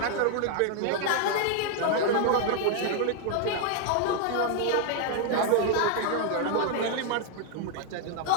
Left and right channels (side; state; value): both; different; correlation 0.00